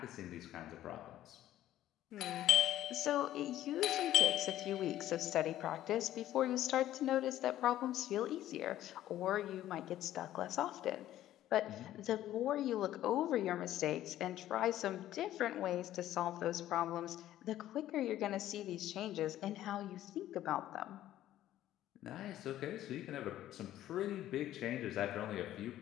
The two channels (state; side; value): quieter; right; 13.2 dB